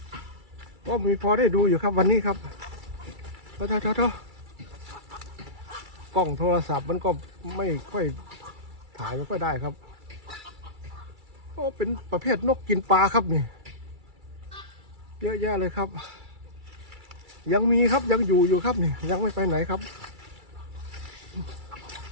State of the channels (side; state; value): left; late; 2.3 ms